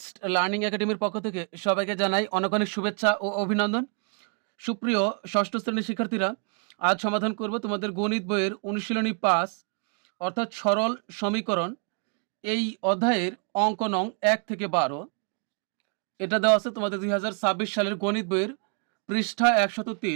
learning একাডেমির পক্ষ থেকে সবাইকে জানাই অনেক অনেক শুভেচ্ছা ও অভিনন্দন। সুপ্রিয় ষষ্ঠ শ্রেণীর শিক্ষার্থীরা, আজ সমাধান করব তোমাদের গণিত বইয়ের অনুশীলনী ৫ অর্থাৎ সরল সমীকরণ। এই অধ্যায়ের অঙ্ক নং ১ থেকে ১২। এটা দেওয়া আছে তোমাদের ২০২৬ সালের গণিত বইয়ের পৃষ্ঠা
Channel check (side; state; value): left; quieter; 38.9 dB